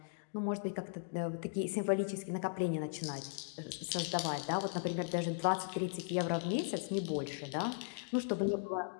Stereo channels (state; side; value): silent; right; digital silence